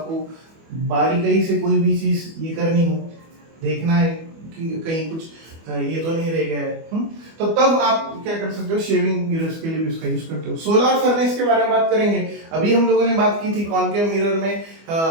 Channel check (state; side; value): late; left; 24 ms